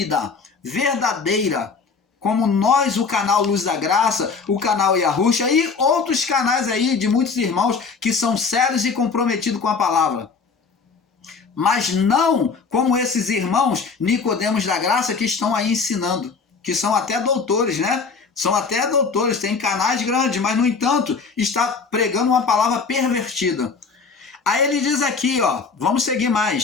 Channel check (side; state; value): right; quieter; 5.0 dB